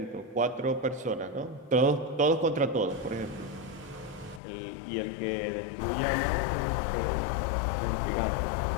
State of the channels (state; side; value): drops out; right; at 4.4 s